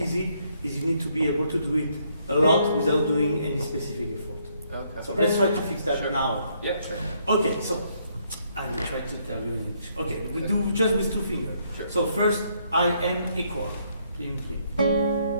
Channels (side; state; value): both; inverted; correlation -0.71